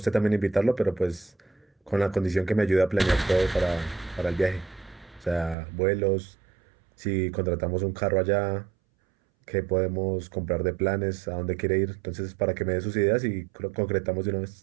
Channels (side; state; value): left; drops out; at 5.6 s